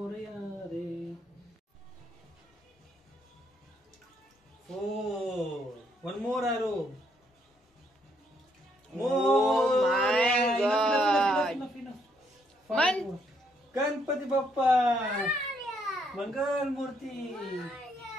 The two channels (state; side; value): normal; both; correlation 0.72